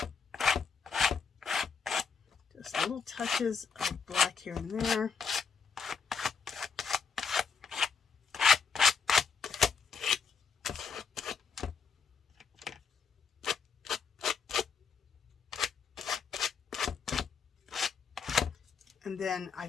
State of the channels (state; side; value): quieter; right; 5.8 dB